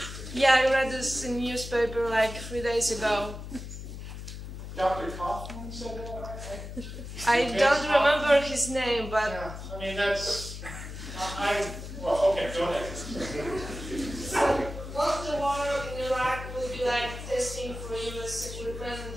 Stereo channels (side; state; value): left; noise; hum, 9 dB below the sound